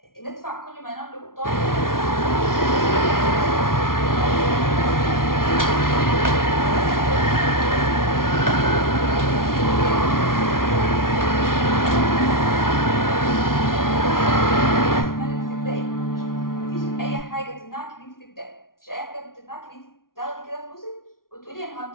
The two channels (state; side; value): late; right; 0.92 ms